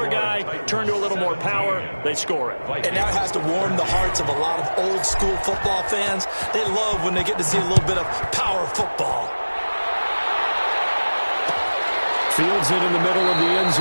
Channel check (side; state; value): both; inverted; correlation -1.00